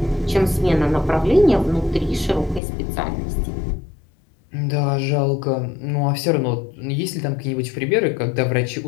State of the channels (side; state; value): right; drops out; at 2.6 s